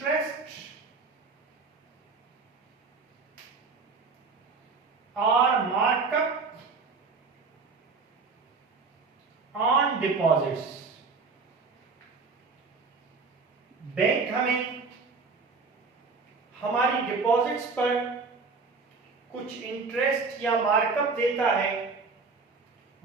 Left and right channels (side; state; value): left; quieter; 4.4 dB